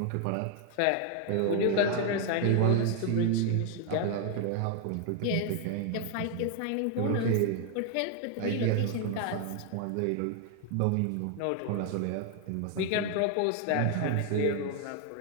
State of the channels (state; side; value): different; both; correlation 0.00